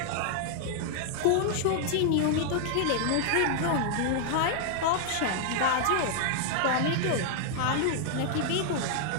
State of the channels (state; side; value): different; both; correlation 0.00